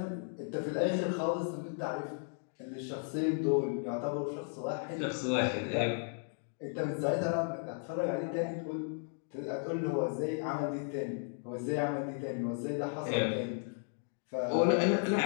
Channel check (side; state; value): right; silent; 55 dB below the other